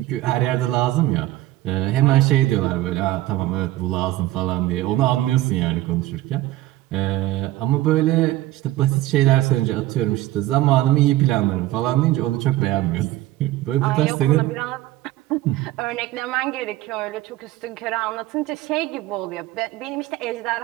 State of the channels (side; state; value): left; quieter; 16.2 dB